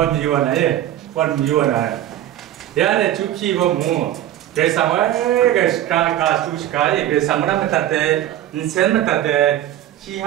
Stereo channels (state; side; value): quieter; left; 12.5 dB